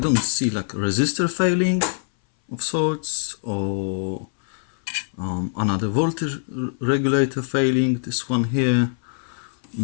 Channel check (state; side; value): silent; right; 60 dB below the other